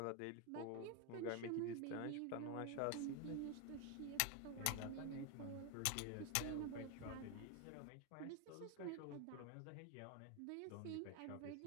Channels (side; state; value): both; different; correlation 0.01